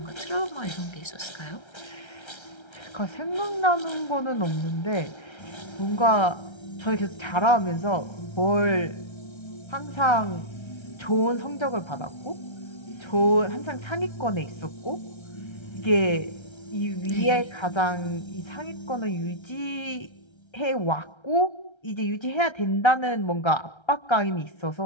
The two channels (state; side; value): late; right; 1.3 ms